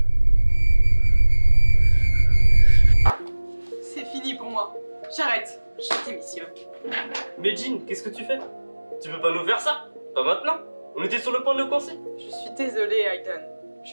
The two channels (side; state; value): both; inverted; correlation -1.00